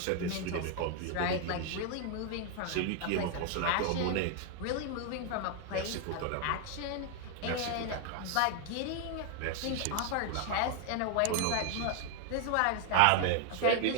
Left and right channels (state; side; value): different; both; correlation 0.00